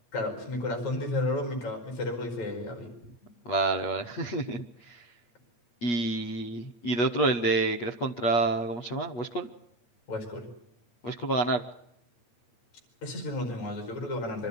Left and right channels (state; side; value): late; right; 8.4 ms